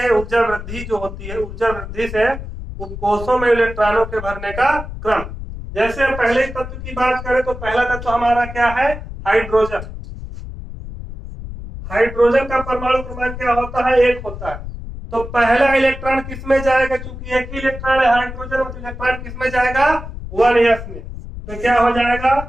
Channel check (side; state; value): left; noise; rumble, 10 dB below the sound